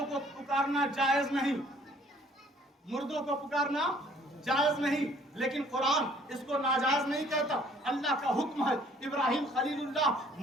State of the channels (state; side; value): normal; both; correlation 0.58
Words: को पुकारना जायज नहीं, मुर्दों को पुकारना जायज नहीं। लेकिन कुरान इसको नाजायज नहीं कहता, अल्लाह का हुक्म है। इब्राहिम खलीलुल्लाह